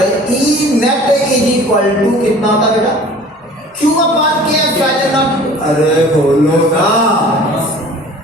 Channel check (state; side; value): normal; both; correlation 0.46